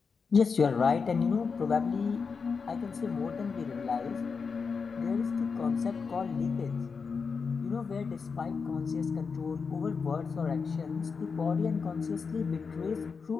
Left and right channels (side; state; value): right; quieter; 5.3 dB